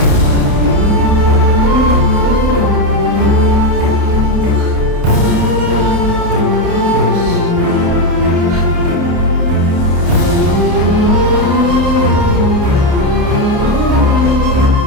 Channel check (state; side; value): late; left; 30 ms